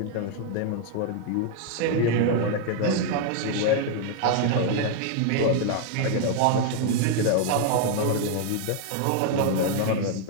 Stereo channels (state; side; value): different; both; correlation 0.00